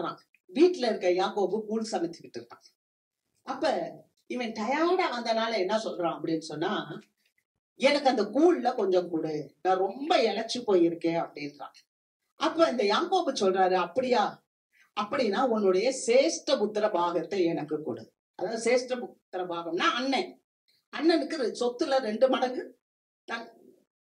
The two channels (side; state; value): both; identical; correlation 1.00